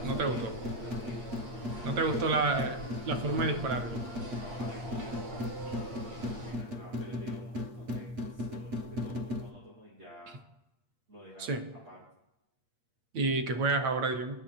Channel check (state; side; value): late; left; 8.5 ms